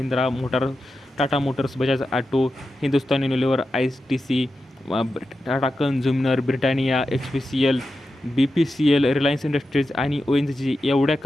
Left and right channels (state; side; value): normal; both; correlation 0.90